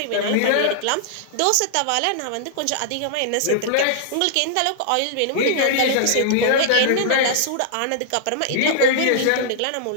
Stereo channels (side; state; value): both; different; correlation -0.01